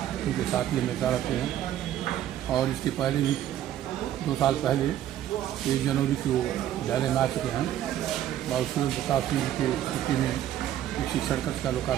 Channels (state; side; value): quieter; left; 11.8 dB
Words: उनके साथ ही हमेशा रहते हैं, और इसके पहले भी 2 साल पहले 1 जनवरी को विद्यालय में आ चुके हैं। बाबू सूर्य प्रताप सिंह जी के छुट्टी में एक शिक्षण कक्ष का